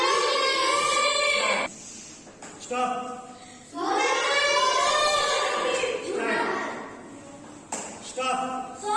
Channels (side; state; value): both; identical; correlation 1.00